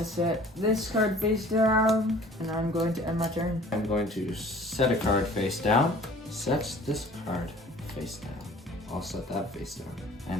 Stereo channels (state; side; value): normal; both; correlation 0.49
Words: set this card face down, and I'm going to end my turn. I'm going to set a card face down, set this card face down. I'll set that face down,